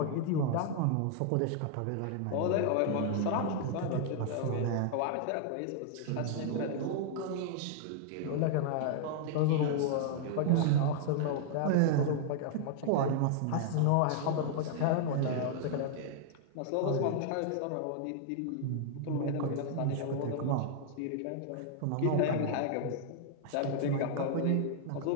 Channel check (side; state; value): both; different; correlation -0.01